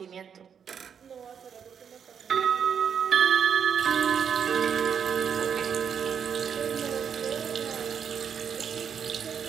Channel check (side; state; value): left; quieter; 7.5 dB